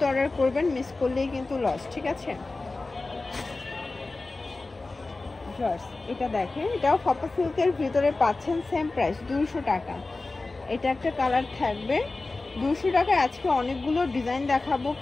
অর্ডার করবেন, মিস করলেই কিন্তু লস, ঠিক আছে? এটা দেখেন, এটাও ফাপা সিল্কের ভিতরে পাচ্ছেন, সেম প্রাইস 200 টাকা। এটা একটা কালার থাকবে 200 টাকায়। আজকে অনেকগুলো ডিজাইন দেখাবো,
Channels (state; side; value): quieter; right; 3.4 dB